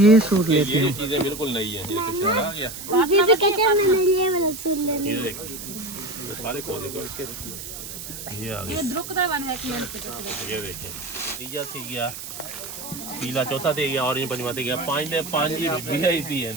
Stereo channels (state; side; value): noise; right; hiss, 10 dB below the sound